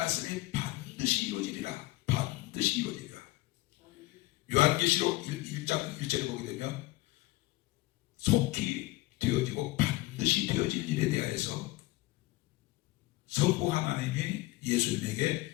반드시 이루어지리라. 반드시 이루어지리라. 요한계시록 1장 1절에 보게 되면 속히 되어지고 반드시 되어질 일에 대하여서 성부 하나님이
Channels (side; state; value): right; quieter; 19.5 dB